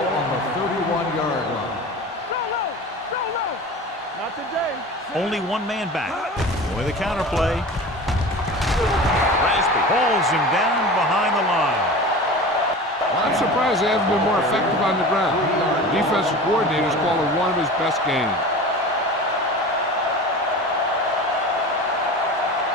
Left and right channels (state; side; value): normal; both; correlation 0.35